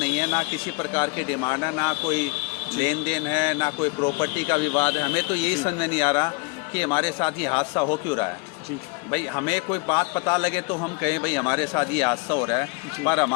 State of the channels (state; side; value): quieter; right; 28.8 dB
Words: नहीं है, ना किसी प्रकार की डिमांड है, ना कोई लेन देन है, ना कोई प्रॉपर्टी का विवाद है। हमें तो यही समझ नहीं आ रहा कि हमारे साथ ये हादसा हो क्यों रहा है। जी भाई हमें कोई बात पता लगे तो हम कहें भाई हमारे साथ ये हादसा हो रहा है, पर